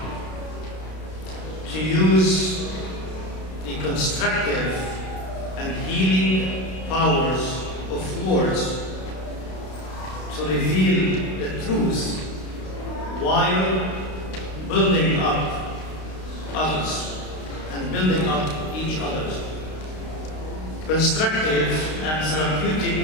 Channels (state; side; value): late; right; 32 ms